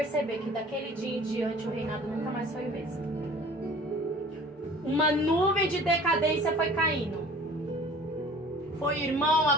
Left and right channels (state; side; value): normal; both; correlation 0.47